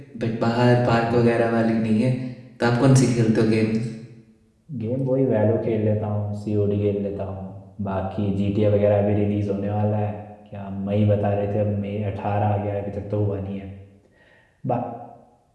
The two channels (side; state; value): both; identical; correlation 1.00